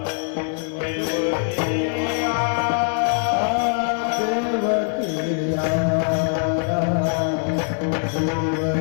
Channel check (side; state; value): right; silent; 64 dB below the other